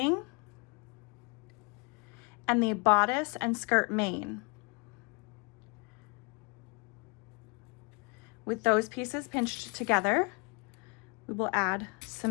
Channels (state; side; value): quieter; right; 30.6 dB